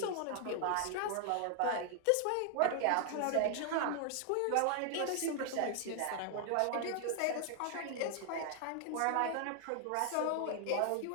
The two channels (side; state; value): both; different; correlation 0.00